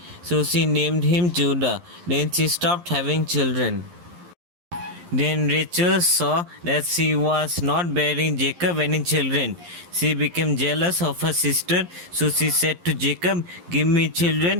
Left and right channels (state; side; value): late; left; 11 ms